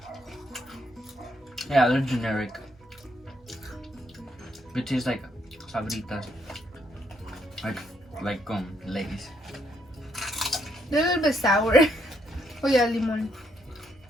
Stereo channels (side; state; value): both; normal; correlation 0.74